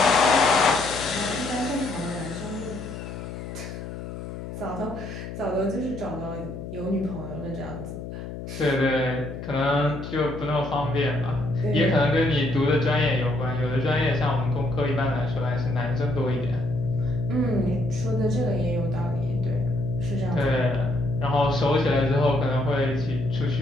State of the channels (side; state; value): left; noise; hum, 9 dB below the sound